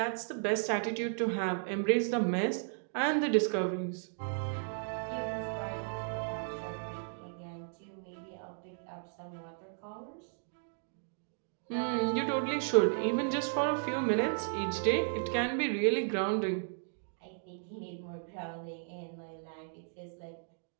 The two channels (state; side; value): silent; left; digital silence